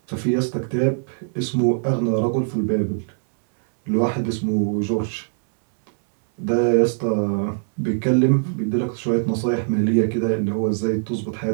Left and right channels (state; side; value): silent; left; 64 dB below the other